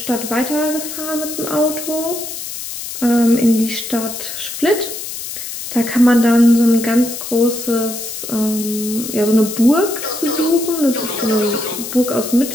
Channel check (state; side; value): noise; left; hiss, 8 dB below the sound